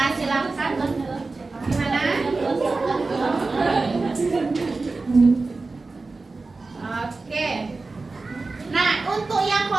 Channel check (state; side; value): quieter; left; 3.7 dB